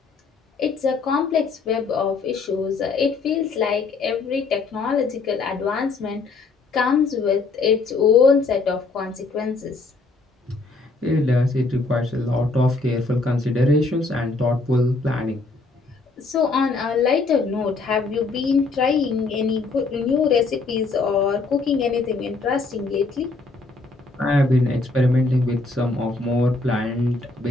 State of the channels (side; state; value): right; quieter; 3.8 dB